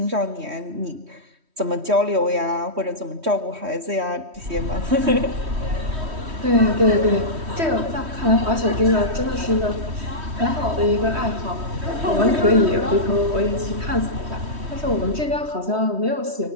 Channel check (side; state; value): left; late; 3.1 ms